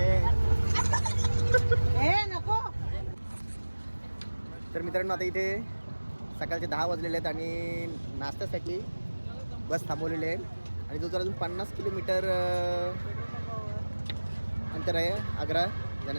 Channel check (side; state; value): both; inverted; correlation -1.00